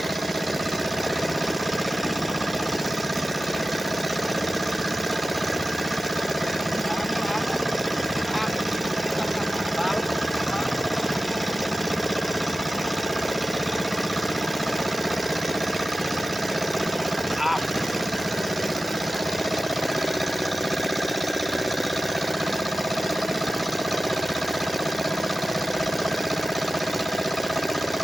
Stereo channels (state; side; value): normal; both; correlation 0.95